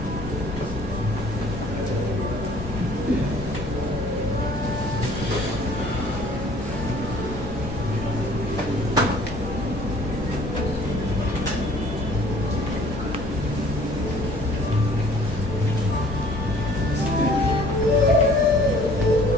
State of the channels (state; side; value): normal; both; correlation 0.54